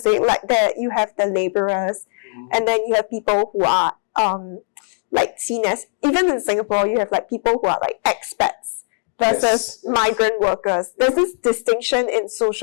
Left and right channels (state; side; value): silent; right; 58 dB below the other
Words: saying, like that you have the laborers, and then you have people who are like seen as, even in Singapore, you have like people who are like expats versus migrant workers. There's this distinction in